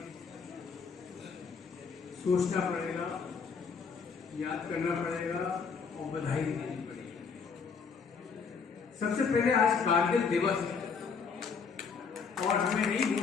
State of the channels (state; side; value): quieter; right; 5.6 dB